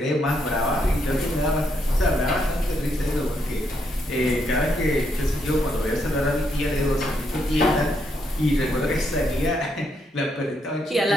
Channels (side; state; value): both; normal; correlation 0.77